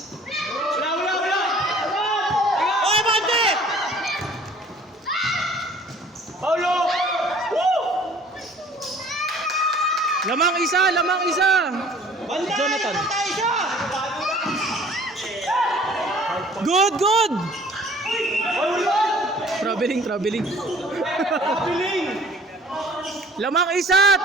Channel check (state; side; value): normal; both; correlation 0.52